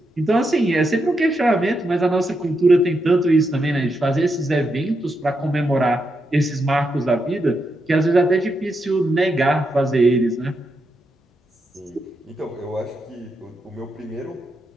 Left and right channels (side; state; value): both; normal; correlation 0.83